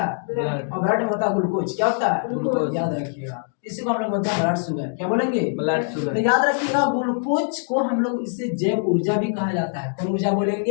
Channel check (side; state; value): right; silent; digital silence